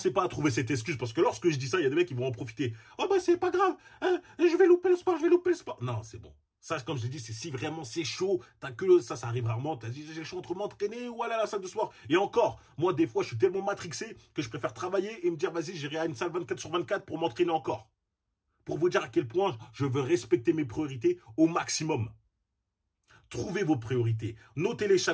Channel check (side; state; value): both; identical; correlation 1.00